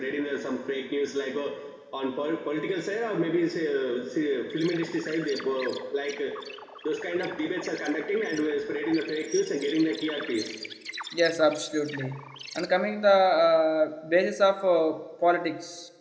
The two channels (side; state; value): both; identical; correlation 1.00